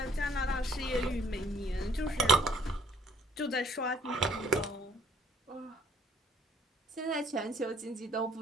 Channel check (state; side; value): normal; both; correlation 0.62